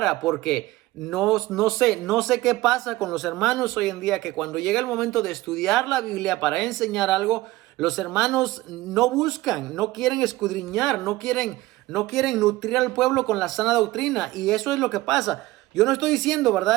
porque no sé qué pasa con los hermanos hoy en día, que cuando llega el momento de estudiar la Biblia para enseñar algo, los hermanos no buscan, no quieren escudriñar, no quieren nutrir al pueblo con la sana doctrina, y eso es lo que pasa. Yo no estoy diciendo,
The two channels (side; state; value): left; quieter; 18.2 dB